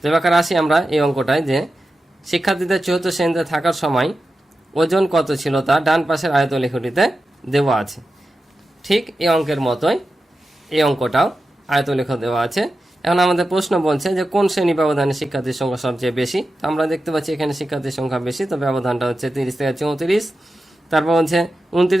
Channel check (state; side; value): normal; both; correlation 0.91